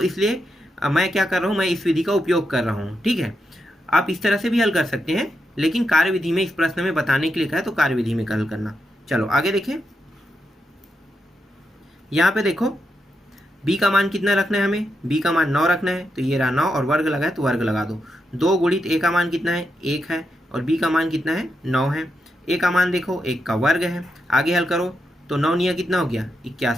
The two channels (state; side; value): normal; both; correlation 0.84